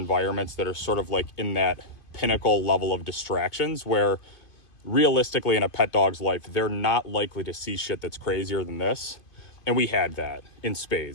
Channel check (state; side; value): late; right; 2.5 ms